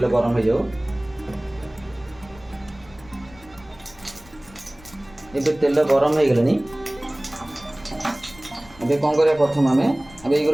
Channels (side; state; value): left; noise; rumble, 23 dB below the sound